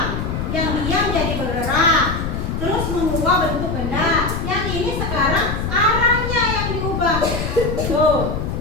yang diam jadi bergerak, terus mengubah bentuk benda. Yang ini sekarang arahnya yang diubah. Tuh,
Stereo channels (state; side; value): noise; left; rumble, 3 dB below the sound